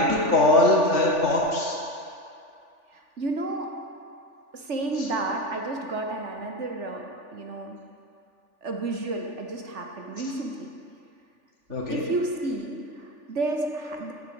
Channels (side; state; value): left; late; 3.4 ms